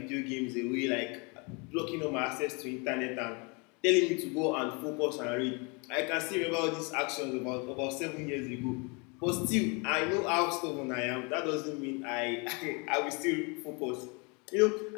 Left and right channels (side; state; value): right; quieter; 31.2 dB